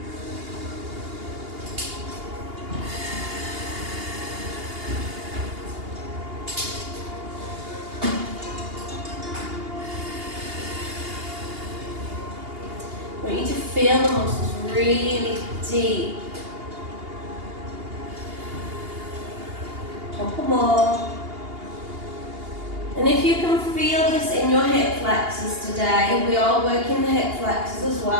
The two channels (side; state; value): left; late; 2.8 ms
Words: I want you to feel the muscles really deep. Couple more. And if you can feel this in your hip flexors today, we are working the hip flexors as